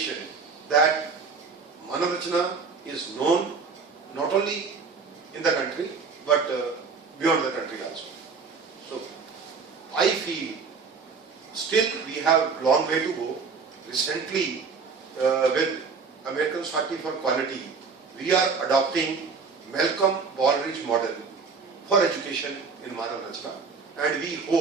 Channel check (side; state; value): left; quieter; 5.0 dB